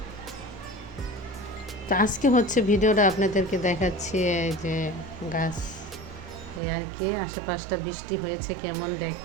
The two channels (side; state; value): left; drops out; at 6.6 s